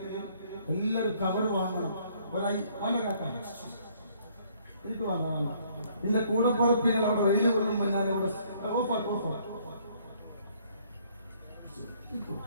എല്ലാവരും കവർ വാങ്ങണം. എനിക്ക് വാങ്ങാൻ എന്റെ കൂടെ പുറപ്പികൾ അവിടെ വെയിൽ കൊള്ളുമ്പോൾ ഞാൻ ഇവിടെ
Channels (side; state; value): both; inverted; correlation -0.64